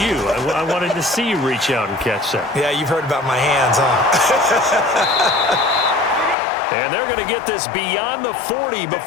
I wanted to see you reach out and catch that. Yeah, you've heard about my hands, huh? And they're going to get this beyond the 40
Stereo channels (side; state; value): right; drops out; at 6.4 s